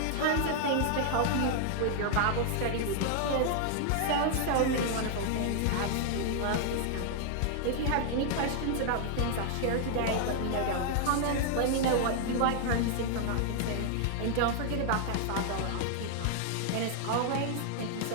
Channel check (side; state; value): both; different; correlation 0.00